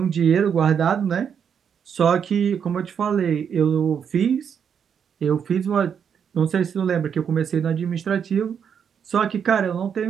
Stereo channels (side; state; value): left; quieter; 7.5 dB